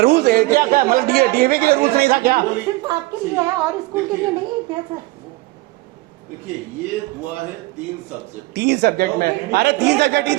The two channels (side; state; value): left; quieter; 20.9 dB